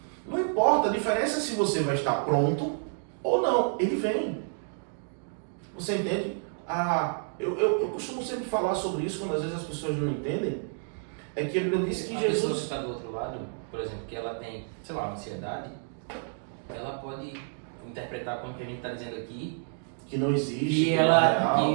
Não importa, a diferença é se você vai estar pronto ou não, ele vem. Você entende? Eu costumo sempre falar sobre isso, quando às vezes as pessoas não entendem, é que ele disse que a Jesus... pessoa que está do outro lado, por exemplo, que ela tem, sei lá, ansiedade, ela pode interpretar como que a gente está dizendo aqui, que não existe, que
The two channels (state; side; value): silent; left; 58 dB below the other